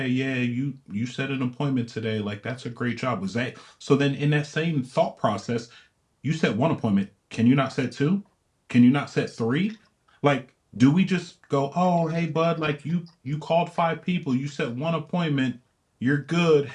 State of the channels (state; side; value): identical; both; correlation 1.00